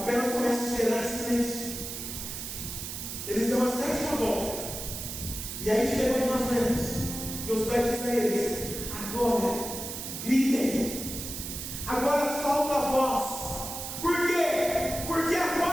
comece a gerar silêncio. Eles dão a 7ª volta. E aí chegou onde nós vemos. Josué diz a eles: agora gritem. Agora solta a voz. Por quê? Porque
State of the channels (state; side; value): noise; right; hiss, 7 dB below the sound